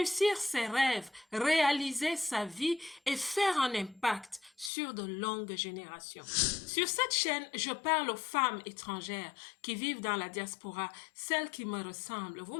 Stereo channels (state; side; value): drops out; right; at 4.7 s